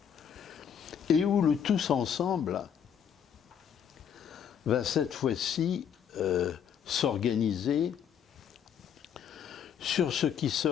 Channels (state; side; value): quieter; right; 8.2 dB